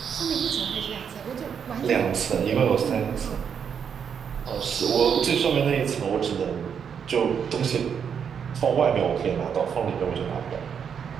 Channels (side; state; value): left; quieter; 7.4 dB